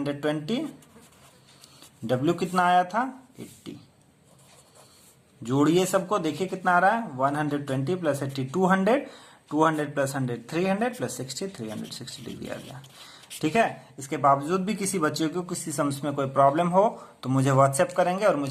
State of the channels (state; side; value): identical; both; correlation 1.00